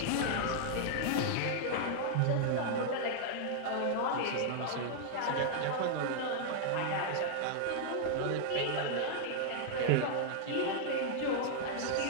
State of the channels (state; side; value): different; both; correlation -0.01